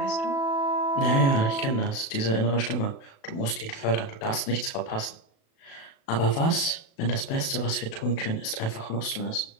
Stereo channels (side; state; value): right; late; 36 ms